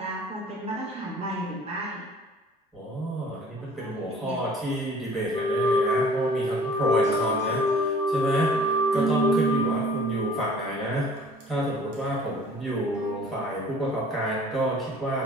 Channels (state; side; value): normal; both; correlation 0.50